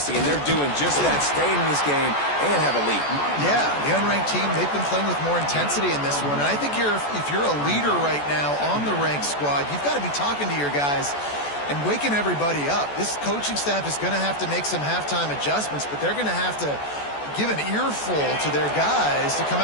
and they're doing just that, staying in this game and have a lead. Yeah, the unranked team, they've been playing with more intensity in this one. And I think if you're a leader right now on the ranked squad, you've got to be talking to your guys and waking everybody up. This coaching staff is going to have to make some halftime adjustments, but they're going to have to give an earful to their guys to come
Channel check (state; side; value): late; right; 14 ms